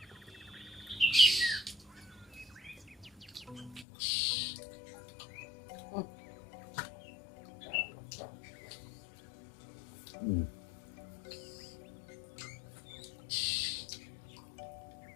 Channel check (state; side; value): drops out; right; at 3.9 s